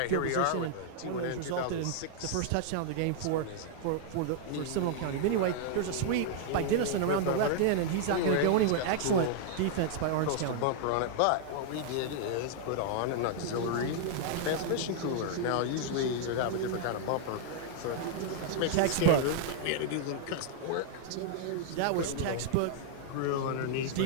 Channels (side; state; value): both; different; correlation 0.00